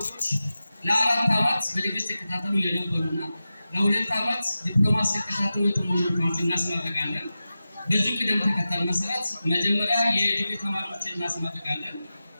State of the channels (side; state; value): both; inverted; correlation -0.94